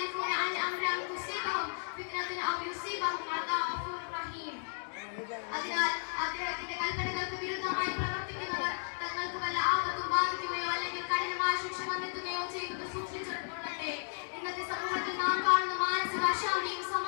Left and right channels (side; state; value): right; silent; digital silence